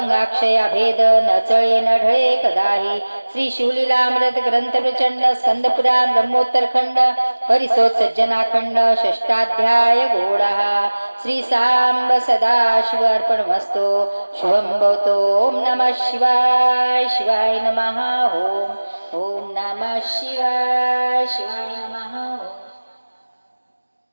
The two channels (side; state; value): both; inverted; correlation -1.00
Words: अभेद न चळे न ढळे कदाही श्री शिवलीलामृत ग्रंथ प्रचंड स्कंद पुराण ब्रह्मोत्तर खंड परिसोत सज्जनाखंड षष्टाध्याय गोडः श्री सांब सदा शिव अर्पणमस्तु शुभं भवतु ओम नमः शिवाय शिवाय नमः ओम नमः शिवाय शिवाय नमः